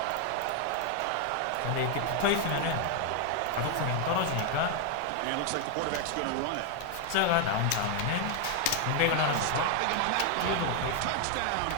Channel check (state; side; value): different; both; correlation 0.00